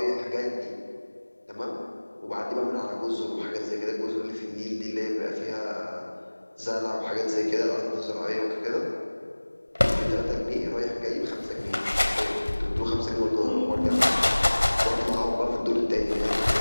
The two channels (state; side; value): inverted; both; correlation -1.00